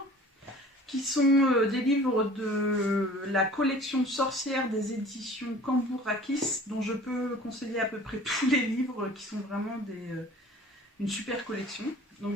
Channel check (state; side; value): normal; both; correlation 0.46